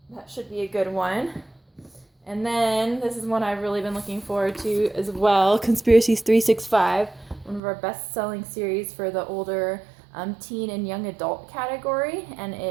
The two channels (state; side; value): drops out; left; at 7.6 s